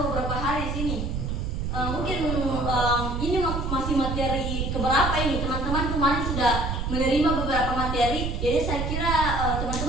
beberapa hari sini. Mungkin ini masih materi keberapa ini? Teman-teman kemarin sudah menerima beberapa materi, jadi saya kira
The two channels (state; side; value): noise; right; rumble, 2 dB below the sound